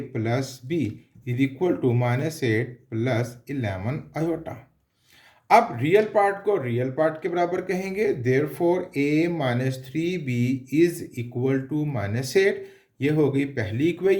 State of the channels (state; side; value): identical; both; correlation 1.00